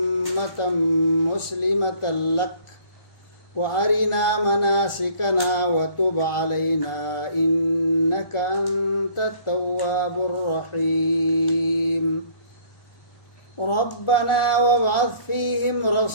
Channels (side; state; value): right; late; 1.4 ms